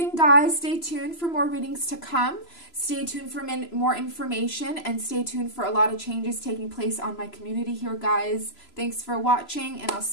guys. Stay tuned for more readings to come. Stay tuned for more information, and stay tuned for a lot of changes taking place on my community here, guys. Thanks for watching, and I'll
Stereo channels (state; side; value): late; right; 3.0 ms